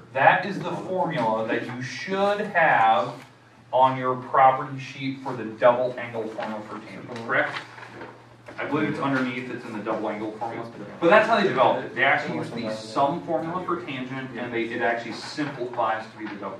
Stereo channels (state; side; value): identical; both; correlation 1.00